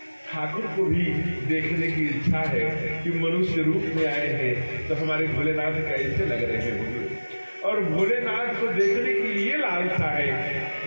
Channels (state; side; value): inverted; both; correlation -1.00